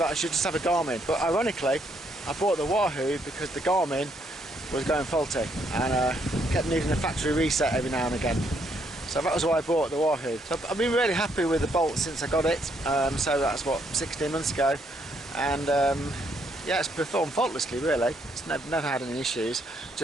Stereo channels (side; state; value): both; normal; correlation 0.72